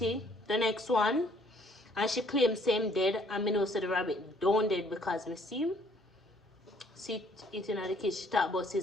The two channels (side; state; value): both; normal; correlation 0.62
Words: the next one. And she claimed same dead, and me know say the rabbit don't dead because me see it eating at the kids. She thought about